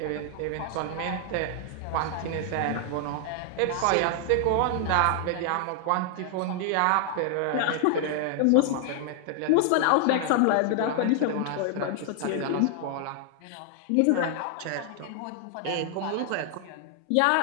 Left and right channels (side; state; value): both; different; correlation 0.00